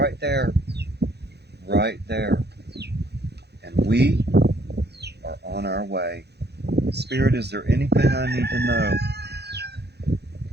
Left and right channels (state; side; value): late; left; 0.48 ms